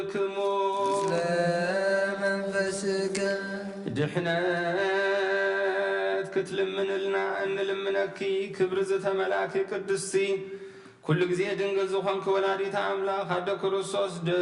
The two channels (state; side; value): identical; both; correlation 1.00